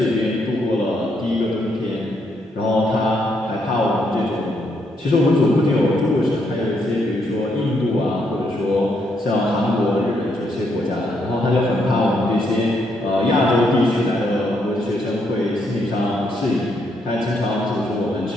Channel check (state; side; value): normal; both; correlation 0.75